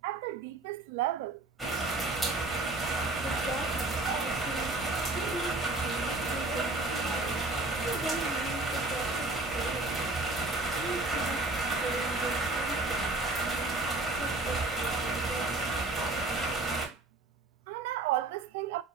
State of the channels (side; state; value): left; quieter; 3.2 dB